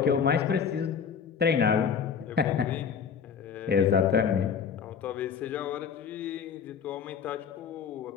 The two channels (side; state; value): right; quieter; 6.9 dB